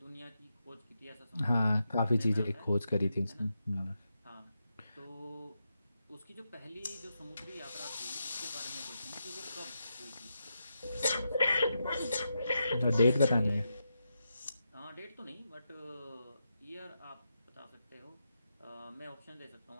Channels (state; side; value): inverted; both; correlation -0.86